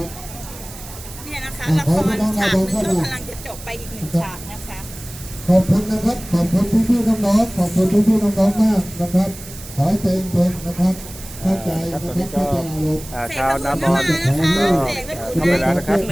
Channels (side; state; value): right; noise; hiss, 15 dB below the sound